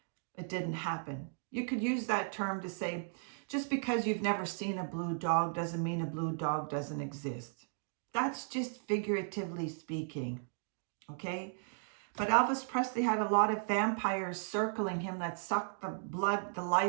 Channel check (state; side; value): silent; left; digital silence